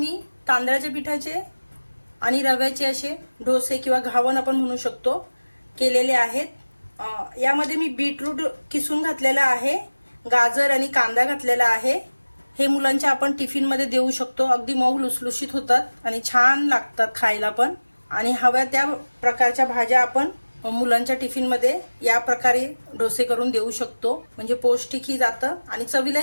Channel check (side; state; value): both; inverted; correlation -1.00